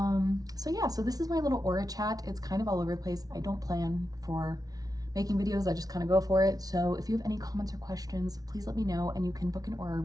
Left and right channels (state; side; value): late; left; 0.18 ms